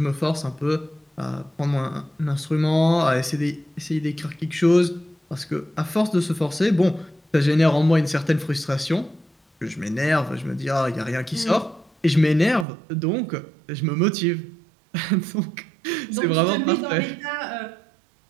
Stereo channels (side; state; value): left; drops out; at 12.7 s